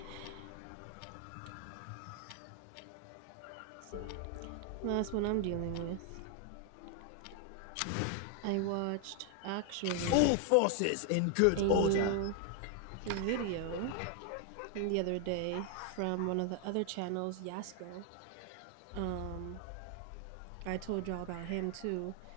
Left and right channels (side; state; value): both; different; correlation 0.01